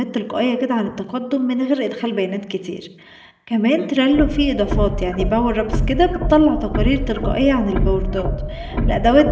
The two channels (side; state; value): both; identical; correlation 1.00